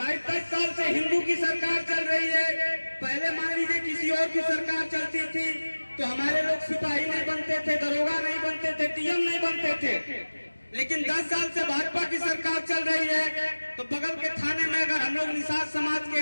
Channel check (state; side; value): inverted; both; correlation -1.00